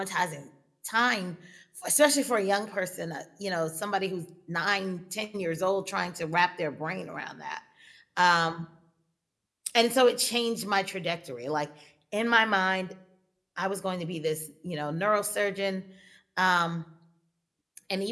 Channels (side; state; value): both; identical; correlation 1.00